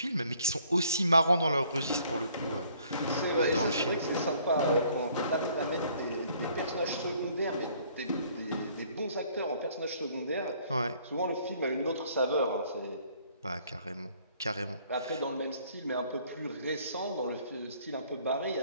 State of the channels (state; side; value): inverted; both; correlation -0.61